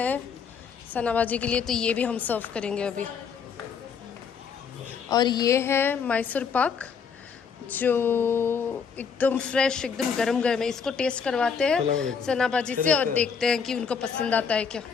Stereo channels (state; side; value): quieter; right; 6.3 dB